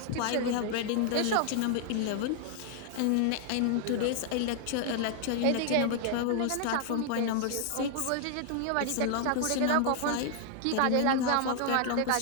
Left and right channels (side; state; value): both; different; correlation 0.00